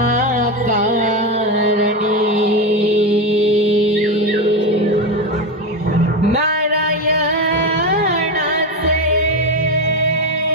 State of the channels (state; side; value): normal; both; correlation 0.15